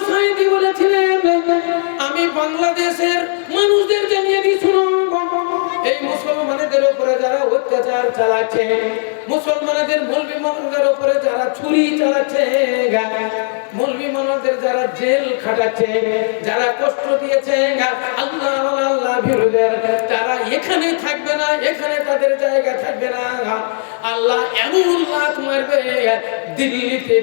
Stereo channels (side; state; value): right; silent; 60 dB below the other